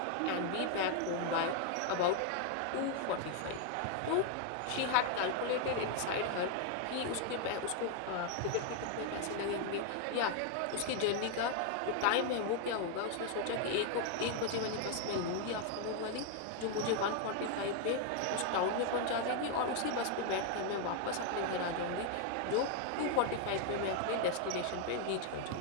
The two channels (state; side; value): different; both; correlation 0.00